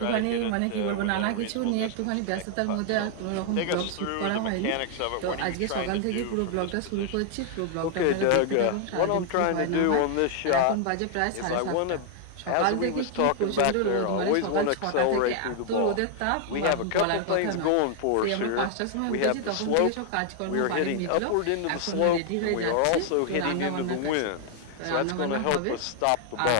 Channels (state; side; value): different; both; correlation 0.00